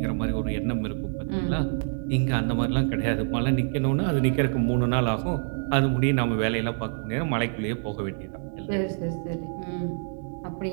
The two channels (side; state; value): left; silent; digital silence